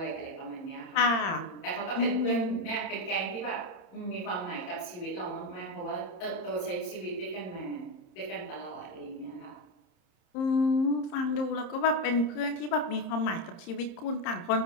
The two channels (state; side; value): late; right; 30 ms